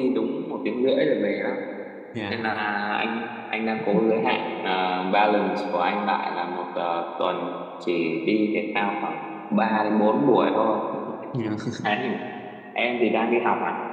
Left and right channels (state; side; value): identical; both; correlation 1.00